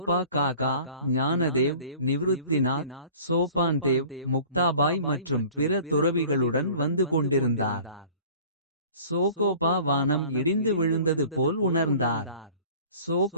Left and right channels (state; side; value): inverted; both; correlation -0.46